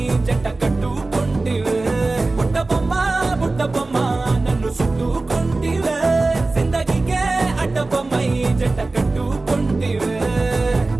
జంట కట్టుకుంటివే బుట్ట బొమ్మ నన్ను చుట్టుకుంటివే జిందగీకే అట్ట బొమ్మై జంట కట్టుకుంటివే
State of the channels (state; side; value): quieter; left; 3.3 dB